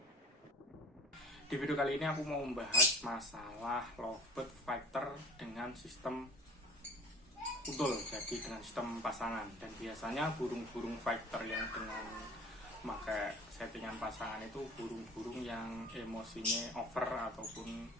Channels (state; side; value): normal; both; correlation 0.44